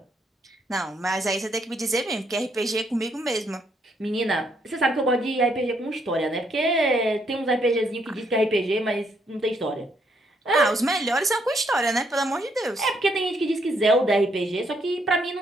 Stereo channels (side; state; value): both; normal; correlation 0.73